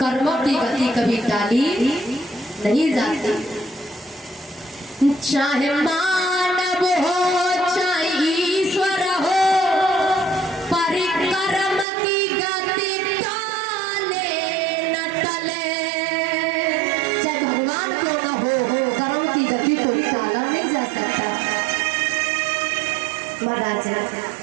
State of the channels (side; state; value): left; drops out; at 11.9 s